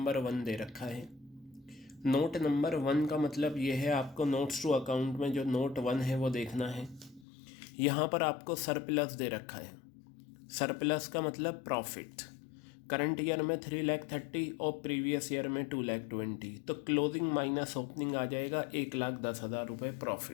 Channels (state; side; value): drops out; right; at 7.2 s